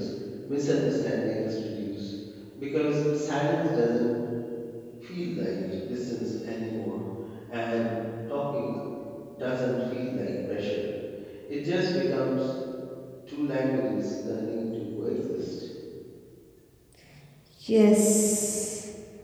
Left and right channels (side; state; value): both; identical; correlation 1.00